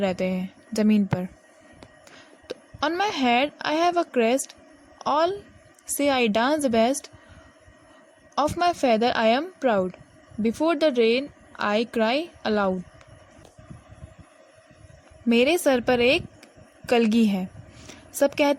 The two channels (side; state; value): both; identical; correlation 1.00